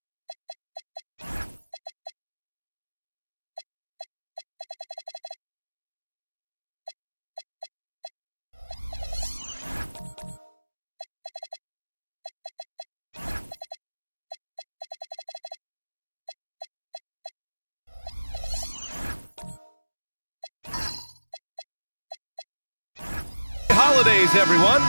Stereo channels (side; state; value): both; inverted; correlation -1.00